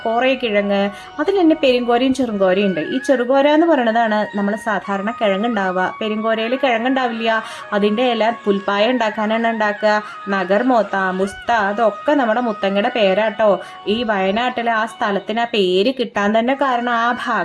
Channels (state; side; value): identical; both; correlation 1.00